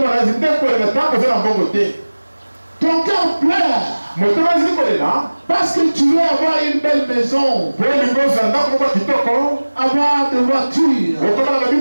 na ezili nde kolela ntango oza na mbongo te. Ton cœur pleure motema ezili kolela parce que tu veux avoir une belle maison, po olingi ozala ndako moko ya kitoko, avoir des voitures, okomana na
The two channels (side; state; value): both; inverted; correlation -1.00